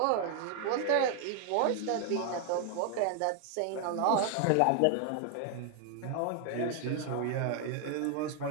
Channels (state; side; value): different; both; correlation 0.00